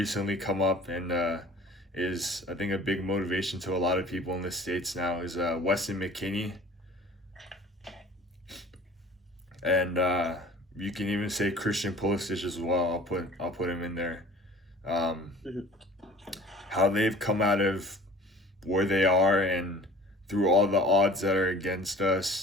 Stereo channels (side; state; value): both; normal; correlation 0.47